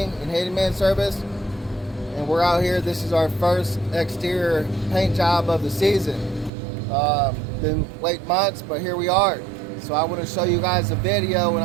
and Handyman Service, and we're out here. This is our first exterior paint job of the season. Been late months, but here we are. So I want to show you guys a video, and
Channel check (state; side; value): drops out; left; at 6.5 s